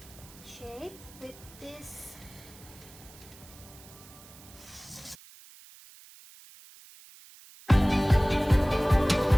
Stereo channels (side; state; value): right; noise; hiss, 21 dB below the sound